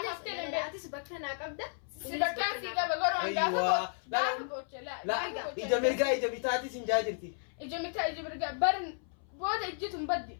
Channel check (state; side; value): silent; right; 56 dB below the other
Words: أفتن لا تسبكنا قبضة سبكان في قبل قرون أيوة. لا إجا مرقا إجا بتاعتي سنجاجرتي إجا متى إجا مرقا برن بودا إجتم بدي